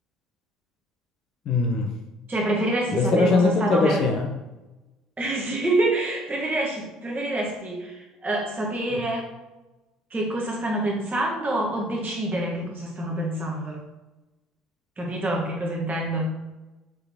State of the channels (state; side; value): normal; both; correlation 0.59